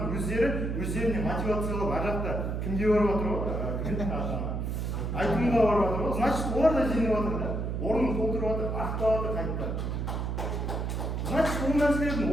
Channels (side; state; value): right; noise; hum, 2 dB below the sound